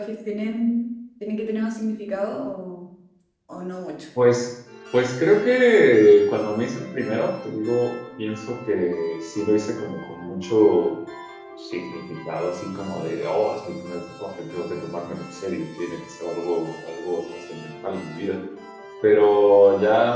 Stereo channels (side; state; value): both; identical; correlation 1.00